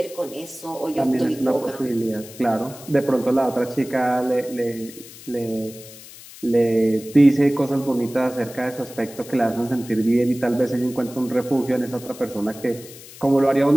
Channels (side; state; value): left; noise; hiss, 18 dB below the sound